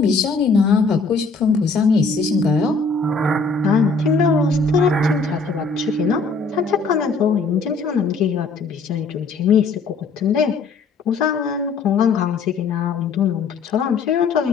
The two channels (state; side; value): quieter; right; 4.3 dB